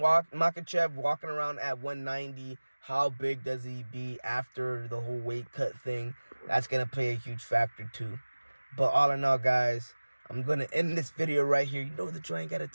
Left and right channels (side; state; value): both; inverted; correlation -1.00